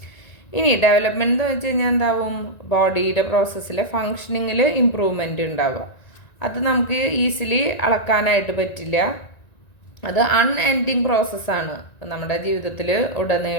ഇനി ഡെവലപ്മെൻറ്റ് എന്ന് വെച്ച് കഴിഞ്ഞാൽ എന്താവും, ബോഡിയുടെ പ്രോസസ്സിലെ ഫങ്ഷനിങ്ങിൽ ഇമ്പ്രൂവ്മെൻറ്റ് ഉണ്ടാവുക. അത് നമുക്ക് ഈസിലി അളക്കാനായിട്ട് പറ്റില്ല. അത് അൺഎൻഡിങ് പ്രോസസ്സാണ്. നമ്മുടെ ജീവിതത്തിൽ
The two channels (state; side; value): late; right; 1.9 ms